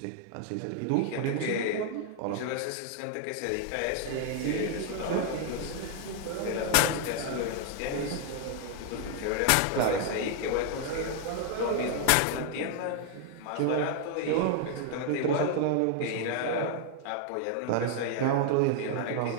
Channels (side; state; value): both; different; correlation 0.00